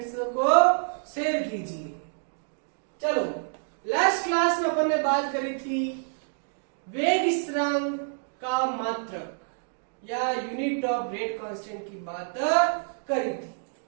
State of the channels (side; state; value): left; silent; digital silence